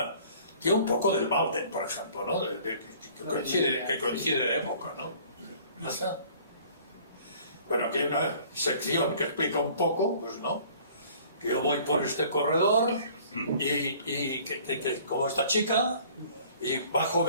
tiene un poco del Walden, por ejemplo, ¿no? Que coincide de época, ¿no? ¿Pasa? Bueno, aquí hay una sección que explica un poco, pues no, que yo voy por este corredor y como esta chica, y bajo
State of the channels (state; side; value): inverted; both; correlation -0.53